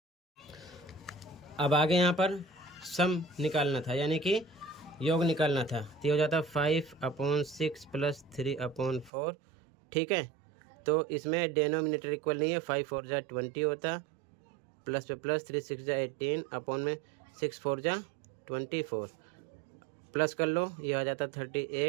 अब आगे यहाँ पर सम निकालना था, यानी कि योग निकालना था, तो हो जाता 5/6 + 3/4। ठीक है, तो इसमें डेनोमिनेटर इक्वल नहीं है, 5 4 जा 20 होता, प्लस पे प्लस 3 6 जा 18, अपॉन में 6 4 जा 24, प्लस कर लो, ये आ जाता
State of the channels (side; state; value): left; drops out; at 9.1 s